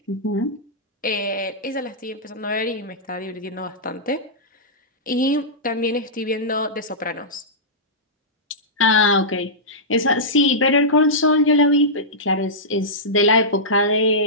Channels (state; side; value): normal; both; correlation -0.14